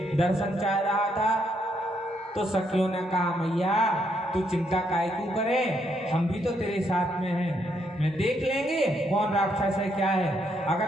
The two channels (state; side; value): normal; both; correlation 0.75